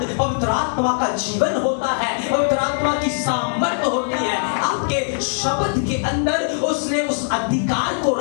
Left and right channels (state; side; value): silent; right; 65 dB below the other